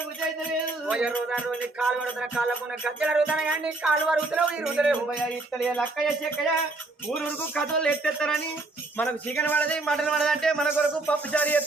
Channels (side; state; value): left; quieter; 3.1 dB